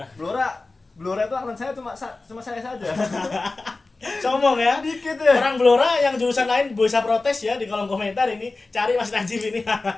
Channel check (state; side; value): quieter; right; 3.5 dB